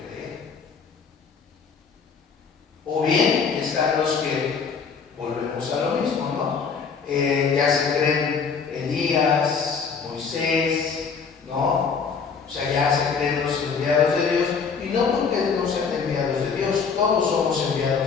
creer. O bien están los que volvemos a lo mismo, ¿no? Ya se creen Elías, Moisés, ¿no? O sea, ya se creen los enviados de Dios, y no porque no sean enviados de Dios, todos somos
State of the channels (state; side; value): quieter; right; 5.7 dB